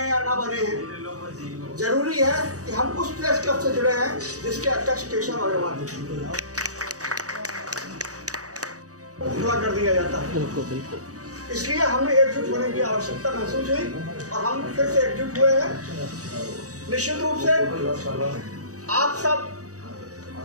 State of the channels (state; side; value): late; left; 0.66 ms